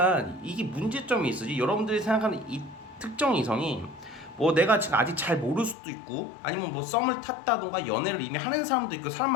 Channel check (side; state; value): right; drops out; at 5.8 s